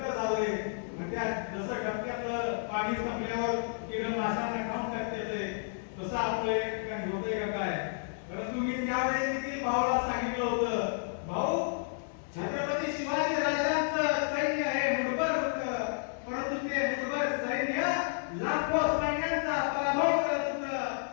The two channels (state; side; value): silent; right; digital silence